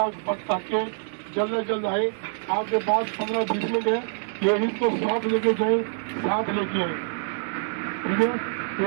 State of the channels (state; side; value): silent; left; digital silence